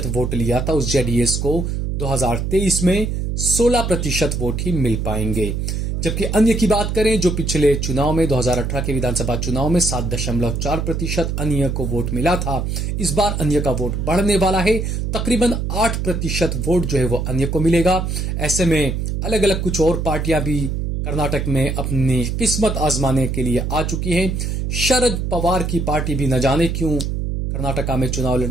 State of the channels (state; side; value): noise; right; hum, 1 dB below the sound